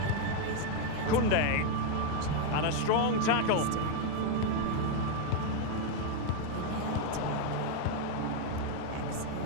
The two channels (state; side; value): different; both; correlation 0.01